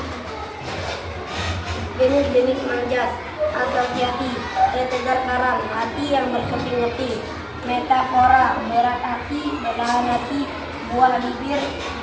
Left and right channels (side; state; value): both; identical; correlation 1.00